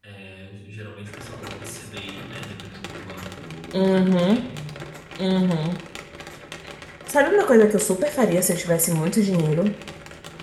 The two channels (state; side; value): identical; both; correlation 1.00